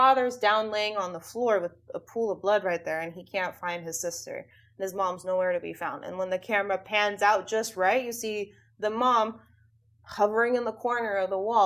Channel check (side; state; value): both; identical; correlation 1.00